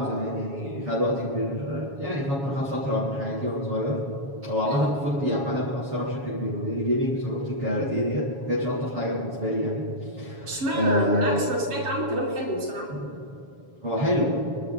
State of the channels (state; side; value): late; left; 7.2 ms